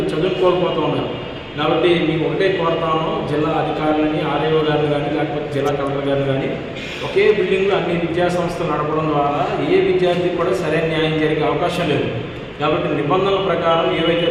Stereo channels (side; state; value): both; identical; correlation 1.00